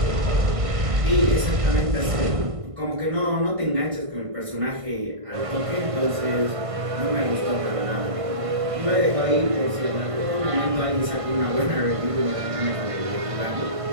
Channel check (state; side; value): late; left; 1.5 ms